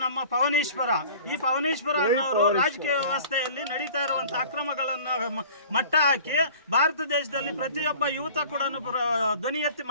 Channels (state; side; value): inverted; both; correlation -0.46